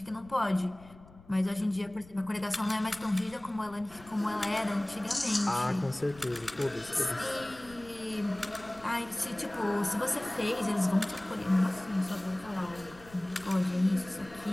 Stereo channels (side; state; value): left; noise; rumble, 22 dB below the sound